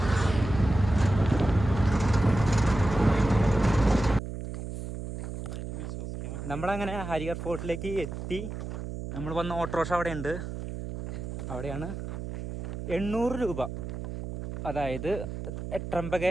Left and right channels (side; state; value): right; noise; hum, 7 dB below the sound